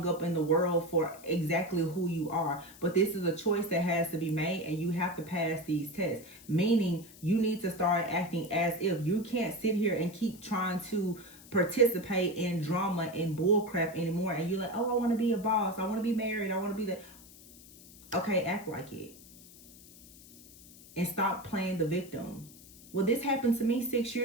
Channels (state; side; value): noise; left; hiss, 21 dB below the sound